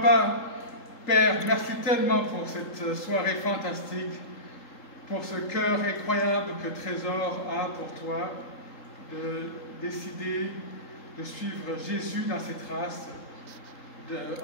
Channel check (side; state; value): right; late; 3.8 ms